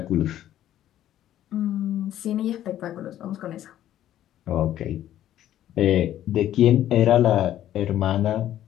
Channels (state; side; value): quieter; right; 12.2 dB